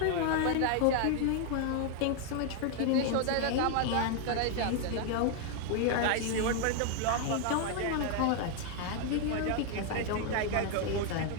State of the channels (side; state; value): both; different; correlation 0.00